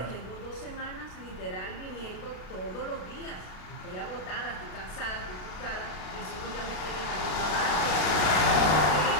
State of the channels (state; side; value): late; right; 33 ms